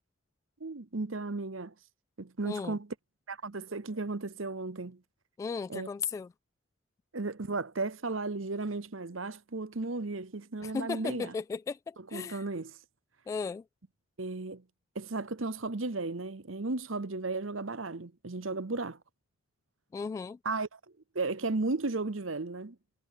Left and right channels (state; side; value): normal; both; correlation 0.13